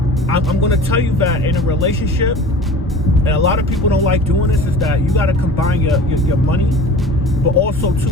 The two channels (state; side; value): normal; both; correlation 0.40